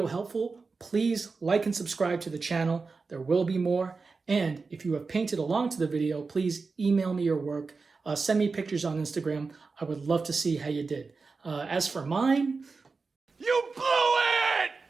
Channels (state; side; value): quieter; left; 4.4 dB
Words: helpful, please like and subscribe to the channel. There will be more. And if you have painted along to the video, please email me your work. Send me pictures on Instagram. I would love to see how you did. As for mine... You blew it!